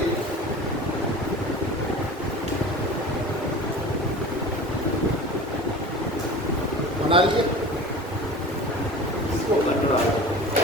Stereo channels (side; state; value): both; normal; correlation 0.37